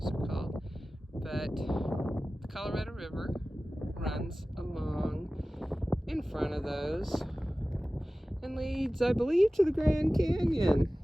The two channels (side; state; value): both; normal; correlation 0.97